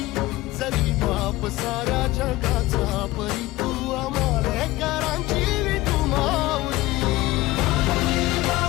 जरी बाप साऱ्या जगाचा परी तू आमालेकरांची विठू माऊली.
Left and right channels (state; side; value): quieter; right; 18.2 dB